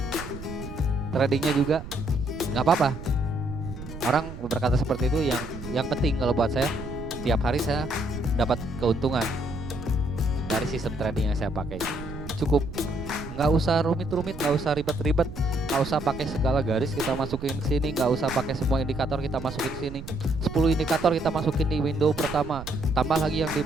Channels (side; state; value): right; noise; rumble, 11 dB below the sound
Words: Tradingnya juga nggak apa-apa. Orang berkata seperti itu, yang penting kalau buat saya tiap hari saya dapat keuntungan dari sistem trading yang saya pakai. Cukup, nggak usah rumit-rumit, nggak usah ribet-ribet, nggak usah pakai segala garis kita masukin ke sini, nggak usah pakai semua indikator kita masukin ke sini. 10 indikator kita masukin di window pertama, tambah lagi yang di